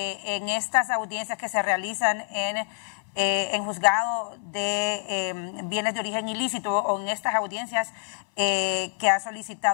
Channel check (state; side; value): silent; right; 60 dB below the other